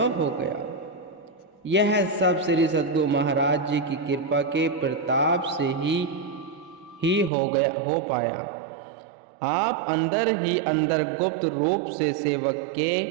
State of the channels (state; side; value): drops out; left; at 7.3 s